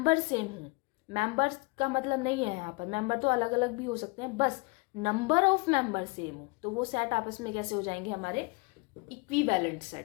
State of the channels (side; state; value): right; quieter; 29.4 dB